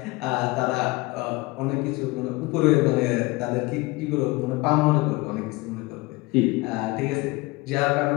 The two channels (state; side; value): quieter; right; 23.1 dB